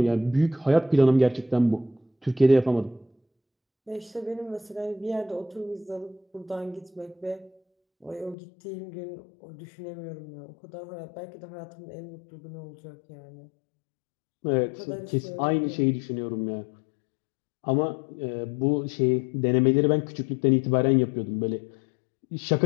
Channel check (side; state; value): right; drops out; at 8.3 s